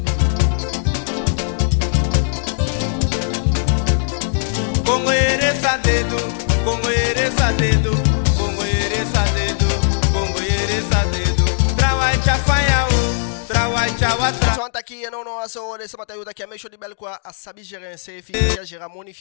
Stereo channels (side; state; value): right; silent; digital silence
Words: daqui não aso de samata yuta que a mexo de bel quoi a sabi gérer un CFI que gera moni